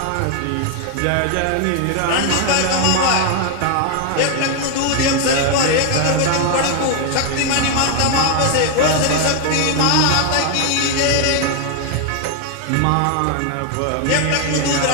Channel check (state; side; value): different; both; correlation 0.00